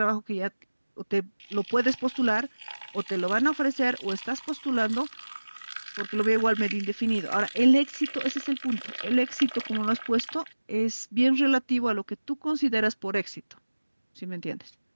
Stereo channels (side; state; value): both; inverted; correlation -1.00